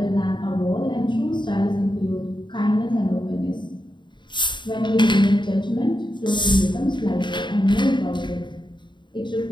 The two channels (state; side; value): late; right; 0.22 ms